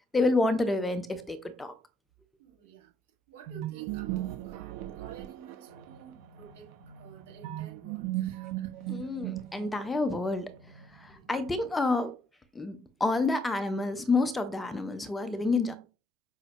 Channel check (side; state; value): both; normal; correlation 0.72